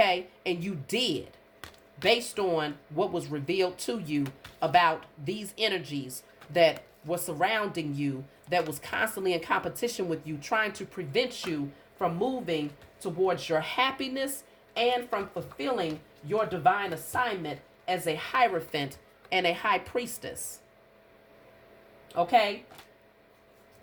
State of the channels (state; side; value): identical; both; correlation 1.00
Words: And you did, based on what was revealed to you about these energies that were surrounding you, that was constantly in competition with you, trying to prevent you from moving towards your happiness and from fulfilling your divine assignment as a hierophant and a high priestess. Okay?